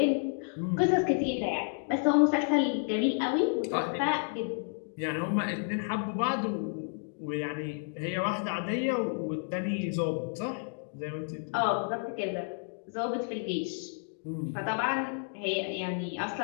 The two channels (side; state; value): right; silent; 57 dB below the other